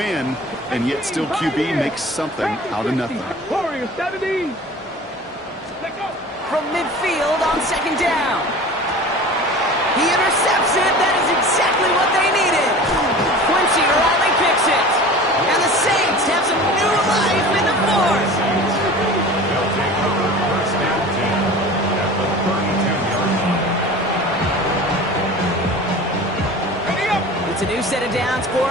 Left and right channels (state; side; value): normal; both; correlation 0.39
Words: and yet still QB makes something out of nothing. Warriors 70. From midfield on 2nd down. He intercepts it. That is exactly what they needed. Quincy Riley picks it. And the Saints have some new life in the 4th. They'll take over 1st and 10 at the 32-yard line. It's a new set of downs for